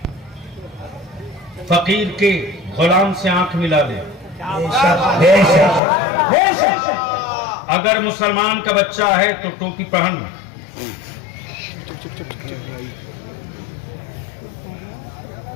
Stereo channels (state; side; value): drops out; right; at 5.8 s